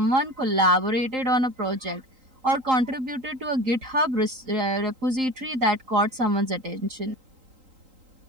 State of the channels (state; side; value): late; left; 3.8 ms